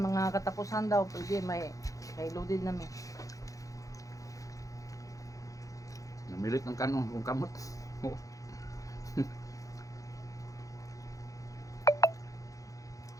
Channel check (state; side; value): late; right; 0.16 ms